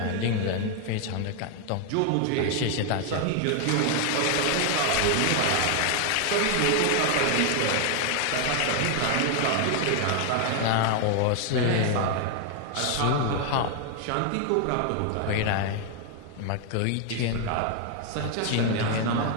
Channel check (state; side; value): different; both; correlation 0.00